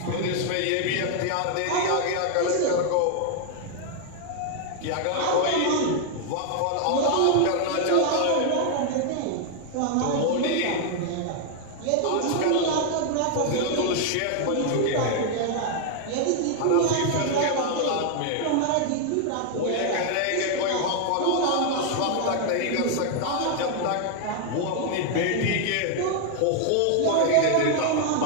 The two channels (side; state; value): both; different; correlation 0.00